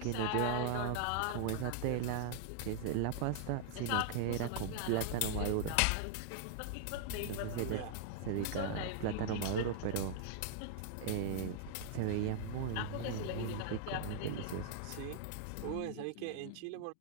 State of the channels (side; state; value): both; different; correlation -0.01